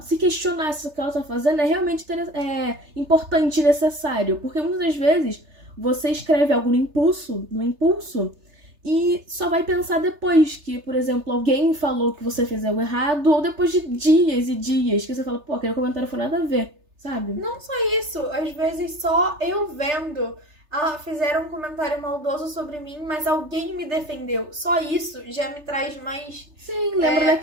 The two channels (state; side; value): late; left; 3.3 ms